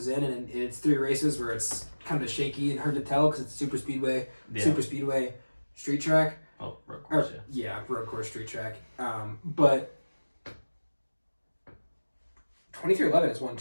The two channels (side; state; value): both; inverted; correlation -1.00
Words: in, and it's 3 races where it's kind of shaky and hard to tell because it's super speedway, street track. Oh, road course, road course, street track. But 2311 is